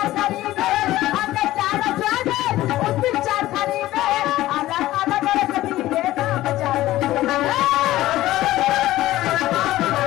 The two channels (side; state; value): right; quieter; 15.7 dB